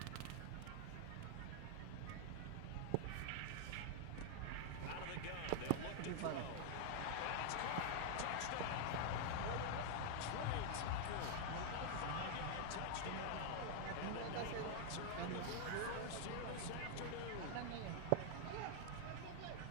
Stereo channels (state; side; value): different; both; correlation 0.00